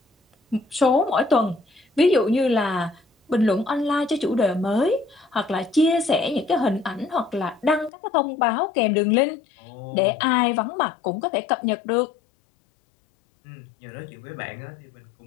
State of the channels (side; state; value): right; drops out; at 7.9 s